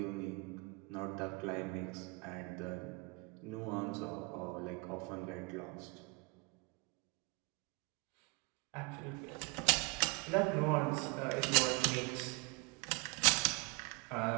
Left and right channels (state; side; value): quieter; left; 28.2 dB